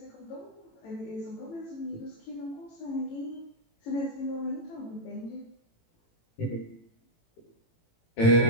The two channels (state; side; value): late; right; 18 ms